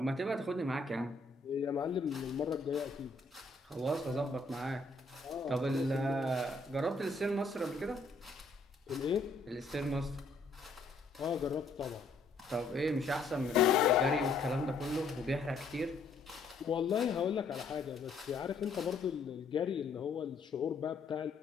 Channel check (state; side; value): quieter; right; 3.6 dB